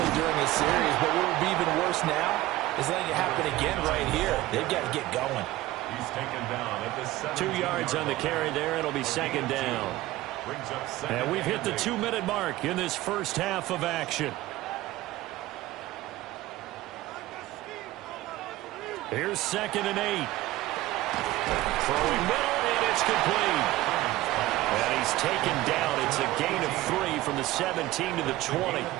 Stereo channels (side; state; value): left; quieter; 17.0 dB